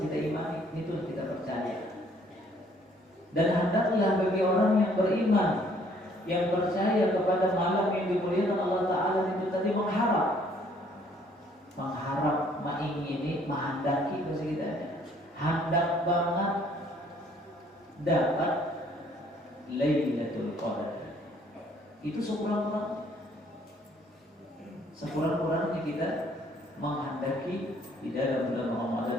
kita imani, itu yang kita percaya. Dan hendaklah bagi orang yang beriman, yang percaya kepada malam yang dimuliakan Allah Ta'ala itu tadi mengharap, mengingini, menghendaki bahasa kita, hendak banget dapat Lailatul Qadar. Itu sekurang-kurangnya kita menghendaki di dalam bulan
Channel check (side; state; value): both; normal; correlation 0.62